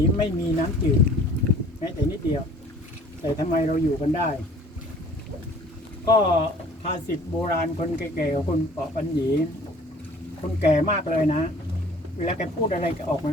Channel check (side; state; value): both; normal; correlation 0.50